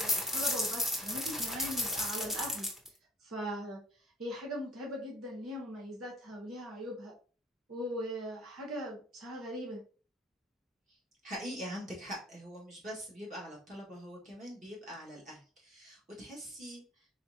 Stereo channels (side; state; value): both; normal; correlation 0.48